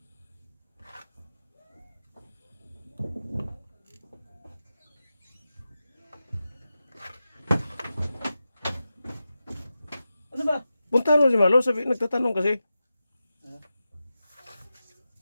Ano ba? Puntahan mo si Malo, sabi, nagtatanong kasi.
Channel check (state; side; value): inverted; both; correlation -0.92